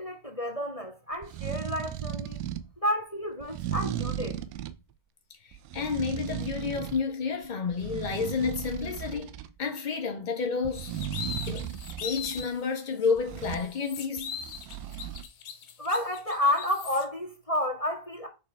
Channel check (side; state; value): right; late; 2.1 ms